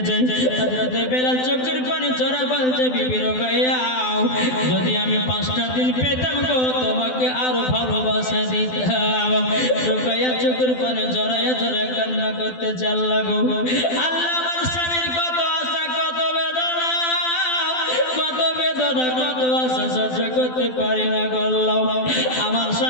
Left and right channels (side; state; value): right; late; 12 ms